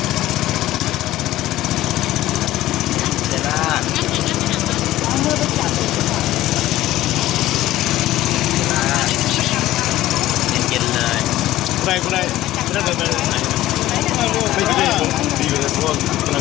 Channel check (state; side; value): quieter; right; 15.1 dB